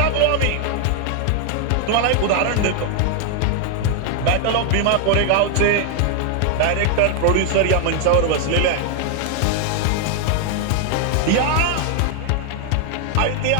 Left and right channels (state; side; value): different; both; correlation 0.00